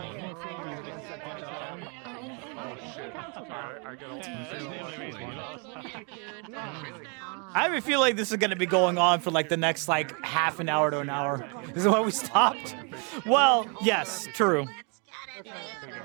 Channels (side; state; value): left; quieter; 36.2 dB